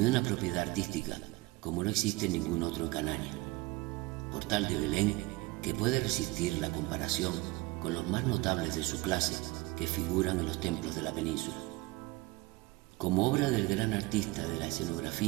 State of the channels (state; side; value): quieter; left; 20.9 dB